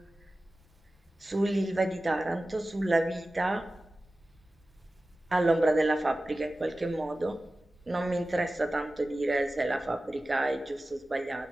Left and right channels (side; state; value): both; normal; correlation 0.96